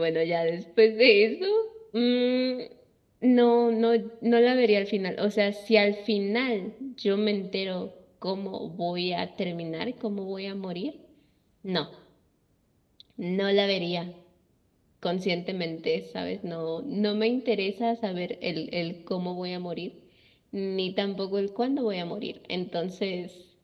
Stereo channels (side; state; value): both; identical; correlation 1.00